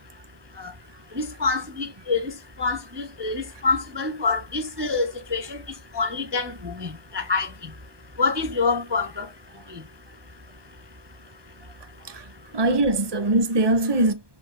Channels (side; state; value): left; late; 1.2 ms